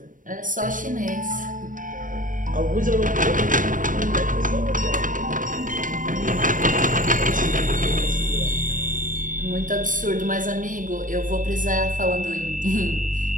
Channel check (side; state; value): left; late; 0.38 ms